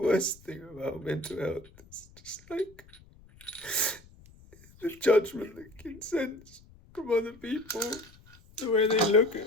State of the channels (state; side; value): noise; left; rumble, 24 dB below the sound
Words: thing about mental health is just like the judgment that can sense from other people, the way they look at